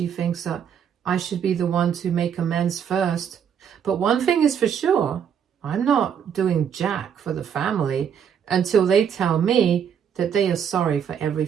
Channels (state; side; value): quieter; left; 8.0 dB